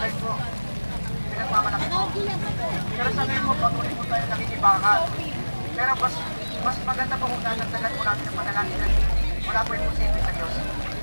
po. Pinagmamalaki po. Pero sabihin mo, pag po tayo nakikibakan. Pero mas maganda po kung natagtagan po natin ang manalangin na wala po yung posible sa Diyos.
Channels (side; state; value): both; inverted; correlation -1.00